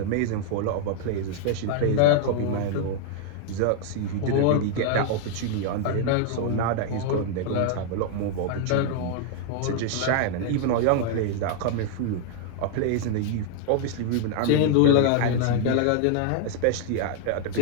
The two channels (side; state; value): both; different; correlation 0.00